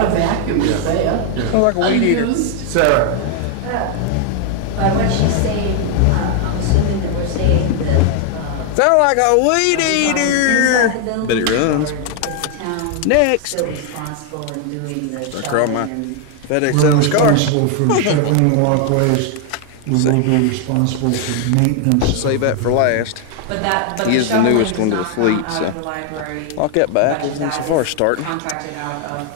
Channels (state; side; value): different; both; correlation 0.00